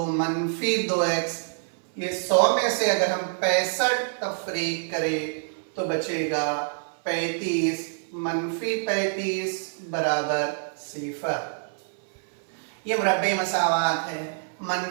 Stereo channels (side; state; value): left; silent; 58 dB below the other